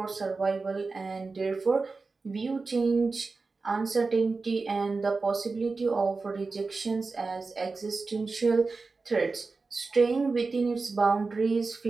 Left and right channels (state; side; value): quieter; left; 4.0 dB